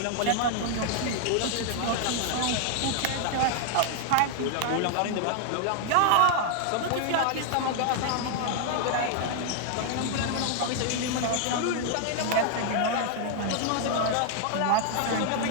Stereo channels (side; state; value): both; different; correlation 0.00